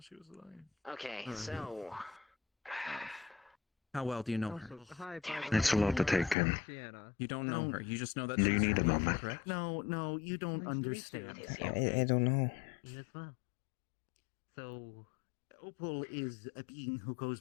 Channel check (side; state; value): right; drops out; at 6.4 s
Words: she was lying? Okay, so How well do you know her? It's a lot to take in. You don't know her. You just know that. Do you she's need a your wife, moment? Correct? No, you don't understand. I don't know. You as well. So, Opal is a being who goes